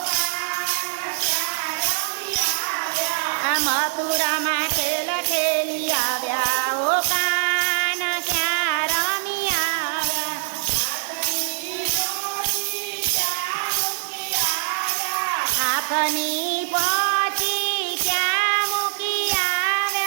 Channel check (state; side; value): silent; left; 56 dB below the other